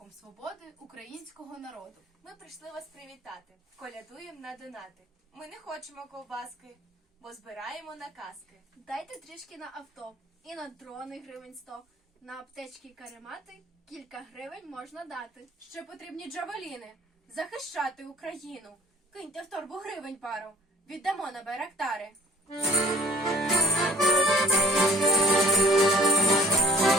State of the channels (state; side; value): normal; both; correlation 0.52